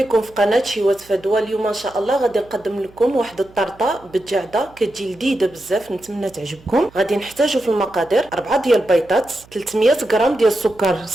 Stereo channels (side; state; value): right; noise; hum, 26 dB below the sound